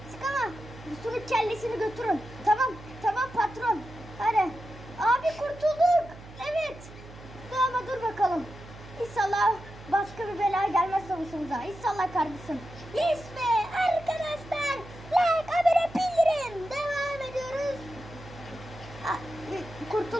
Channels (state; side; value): noise; right; hum, 17 dB below the sound